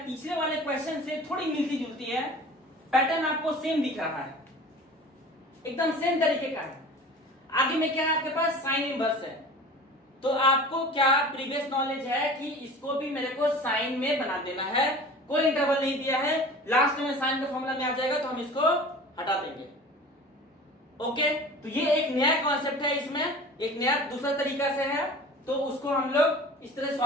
पिछले वाले क्वेश्चन से थोड़ी मिलती जुलती है, पैटर्न आपको सेम दिख रहा है, एकदम सेम तरीके का है। आगे में क्या है आपके पास? साइन इनवर्स है। तो आपको क्या प्रीवियस नॉलेज है कि इसको भी मेरे को साइन में बना देना है, कोई इंटरवल नहीं दिया है, लास्ट में साइन का फॉर्मूला में आ जाएगा तो हम इसको हटा देंगे। ओके, तो ये एक नया कॉन्सेप्ट है, इसमें एक नया दूसरा तरीका से है, तो उसको हम लोग इस तरह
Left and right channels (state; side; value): normal; both; correlation 0.40